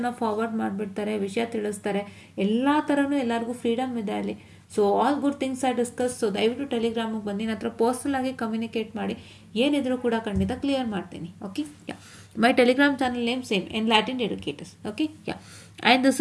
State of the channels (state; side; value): identical; both; correlation 1.00